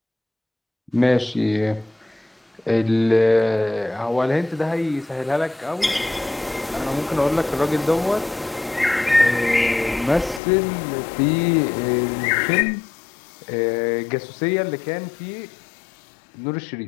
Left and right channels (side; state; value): right; drops out; at 10.4 s